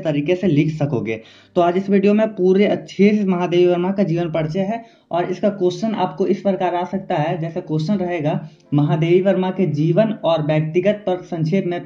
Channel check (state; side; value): identical; both; correlation 1.00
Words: तरीके से लिख सकोगे। तो आज इस वीडियो में पूरे अच्छे से महादेवी वर्मा का जीवन परिचय है, और इसका क्वेश्चन आपको इस प्रकार आ सकता है। जैसे क्वेश्चन रहेगा, महादेवी वर्मा के जीवन और व्यक्तिगत पर संक्षेप में